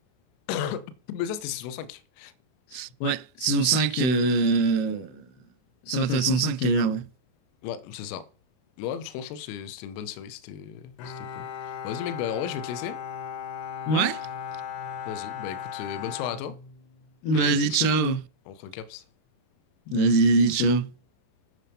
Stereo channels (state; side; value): late; right; 32 ms